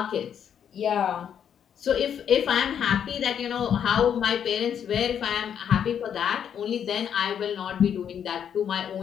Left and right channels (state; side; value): quieter; right; 8.5 dB